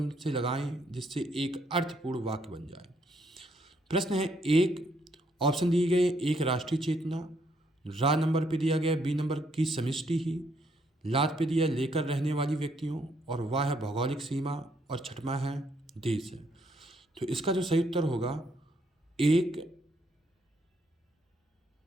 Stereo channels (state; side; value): normal; both; correlation 0.72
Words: से लगाएं जिससे एक अर्थपूर्ण वाक्य बन जाए। प्रश्न है 1, ऑप्शन दिए गए, 1 राष्ट्रीय चेतना, रा नंबर पे दिया गया बी नंबर की समष्टि ही, लात पे दिया लेकर रहने वाली व्यक्तियों, और वाह है भौगोलिक सीमा, और छठवां है देश है। तो इसका जो सही उत्तर होगा 1